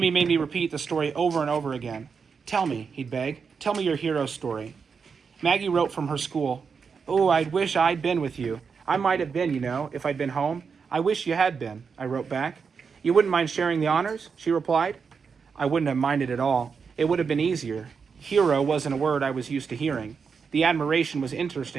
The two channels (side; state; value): left; quieter; 5.8 dB